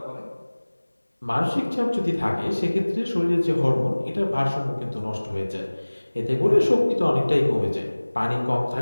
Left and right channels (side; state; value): both; inverted; correlation -1.00